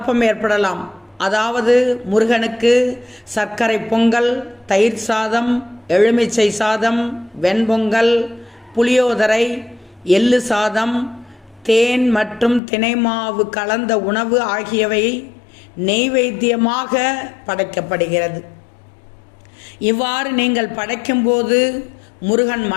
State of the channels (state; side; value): drops out; right; at 12.6 s